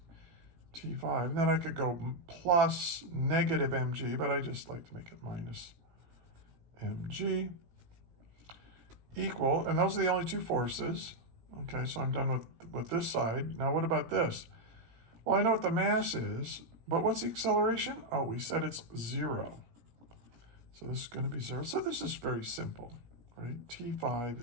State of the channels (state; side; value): late; left; 17 ms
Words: T5. And then I could go plus negative mg, but I just like to make it minus mg equal, and those are the only two forces. Okay, so I'm done with this side. Now what about this? Well, I know what the mass is, but what's the acceleration? Oh, we said it's 0. So this is going to be 0. So this is very simple, right?